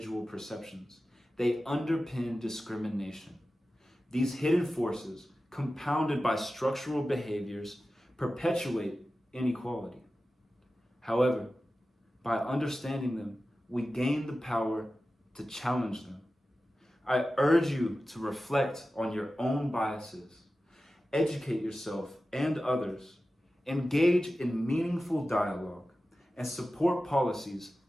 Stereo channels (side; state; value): both; normal; correlation 0.94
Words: perceptions, they underpin discrimination. These hidden forces, compounded by structural behaviors, perpetuate inequality. However, by understanding them, we gain the power to challenge them. I urge you to reflect on your own biases, educate yourself and others, engage in meaningful dialogue, and support policies